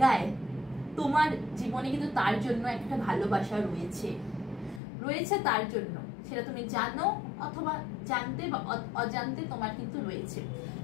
তোমার জীবনে কিন্তু তার জন্য একটা ভালোবাসা রয়েছে তার জন্য, সেটা তুমি জানো অথবা জানতে বা অজান্তে তোমার কিন্তু রয়েছে।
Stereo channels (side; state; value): right; drops out; at 4.8 s